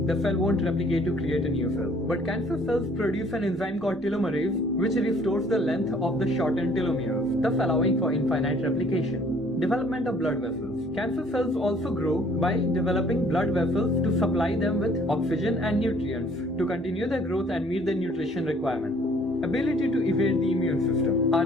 the cell won't replicate to create a new cell. But cancer cells produce an enzyme called telomerase, which restores the length of the shortened telomeres, thus allowing for infinite replication. Development of blood vessels. Cancer cells also grow by developing blood vessels to supply them with oxygen and nutrients to continue their growth and meet their nutrition requirement. Ability to evade the immune system.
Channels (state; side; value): normal; both; correlation 0.58